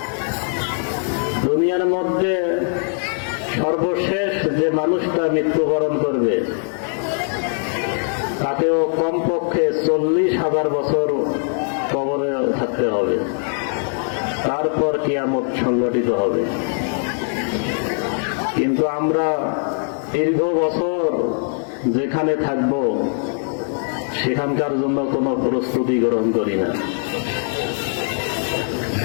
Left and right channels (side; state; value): right; silent; 58 dB below the other